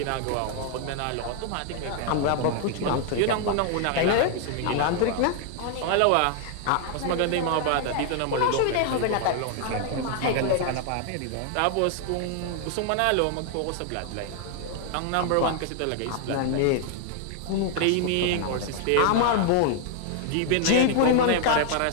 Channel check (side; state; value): both; different; correlation 0.00